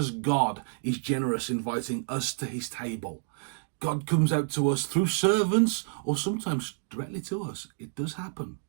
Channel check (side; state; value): left; silent; digital silence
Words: God is generous inviting us to his table, God comes out to us through servants, or sometimes directly to us. It does happen.